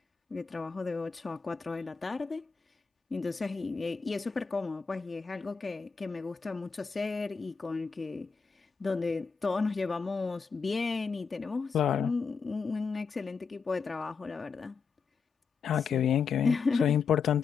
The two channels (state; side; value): quieter; right; 5.4 dB